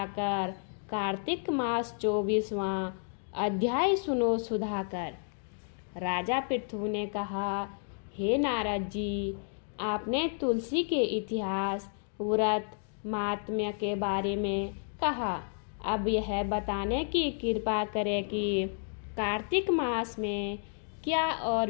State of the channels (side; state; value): right; silent; 57 dB below the other